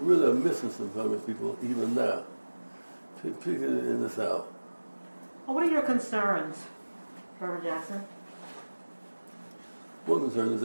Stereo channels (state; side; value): inverted; both; correlation -1.00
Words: really are missing some Congress people even now, particularly in the South. What are your concerns, Reverend Jackson? One concern is